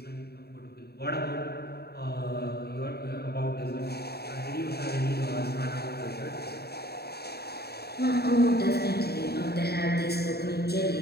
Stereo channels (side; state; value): right; late; 0.47 ms